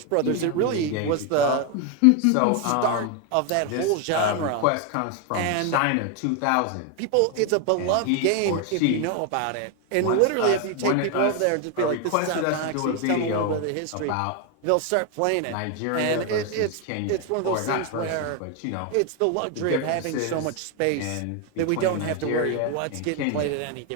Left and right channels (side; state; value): both; different; correlation 0.01